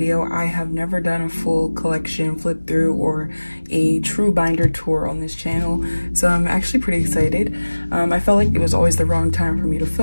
I have never done a full collection flip through or a true binder tour on this channel, so I'm actually pretty excited. I felt like it was always the wrong time for me to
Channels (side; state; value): both; inverted; correlation -1.00